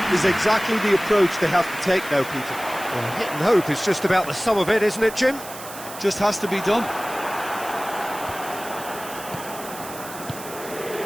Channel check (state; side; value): noise; right; hiss, 13 dB below the sound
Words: is exactly the approach they have to take now, Peter. Well, hit and hope is just about the sum of it, isn't it, Jim? Just has to be done.